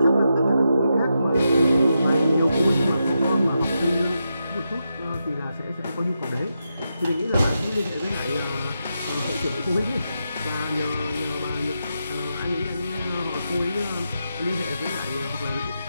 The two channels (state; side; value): inverted; both; correlation -0.86